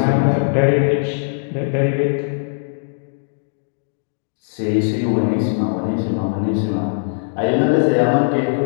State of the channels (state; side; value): silent; right; digital silence